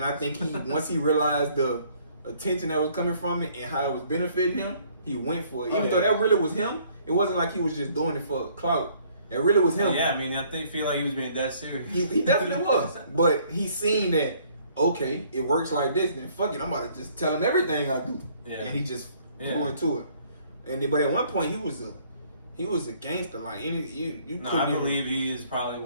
I think he once he realized the attention that was coming from it and how it was benefiting him, he went for it. Even though that really was him, it wasn't like he was just doing it for clout. That really was him. Yeah, I mean, I feel like he was being that serious. He definitely was. But he seen that, okay, it works like this, then fuck it, I'm about to just tell him everything I do. Yeah. And he just flew into it. And then, but at one point he was a gangster. Like you No, couldn't I even- believe he is probably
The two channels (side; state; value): both; inverted; correlation -0.61